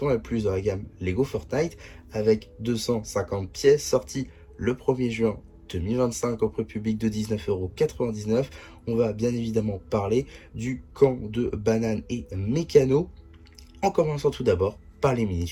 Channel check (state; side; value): identical; both; correlation 1.00